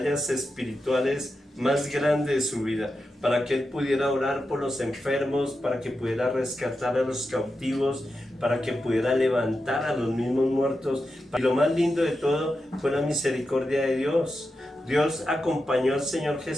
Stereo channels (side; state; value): both; normal; correlation 0.89